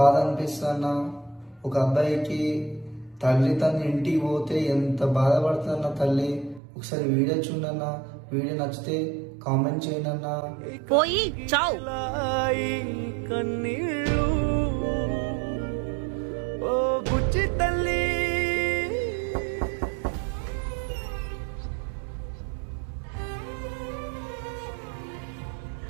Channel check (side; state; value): left; drops out; at 6.6 s